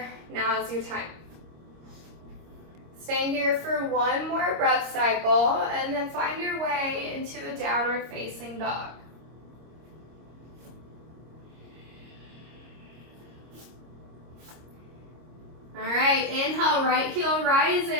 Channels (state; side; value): late; left; 26 ms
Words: Now is your time. Staying here for one more breath cycle and then find your way into a downward facing dog. All right, inhale, right heel